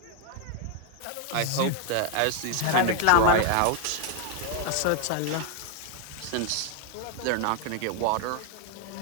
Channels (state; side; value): different; both; correlation 0.01